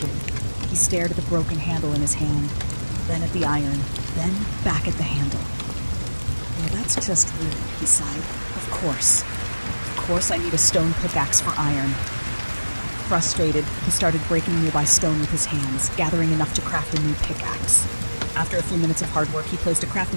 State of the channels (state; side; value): inverted; both; correlation -1.00